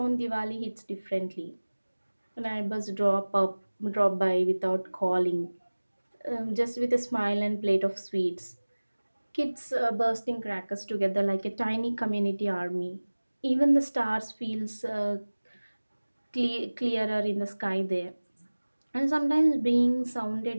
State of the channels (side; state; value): both; inverted; correlation -1.00